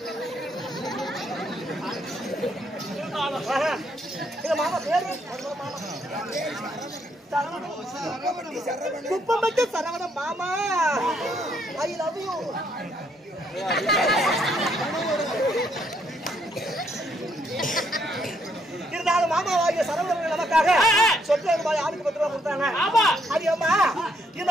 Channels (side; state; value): both; normal; correlation 0.72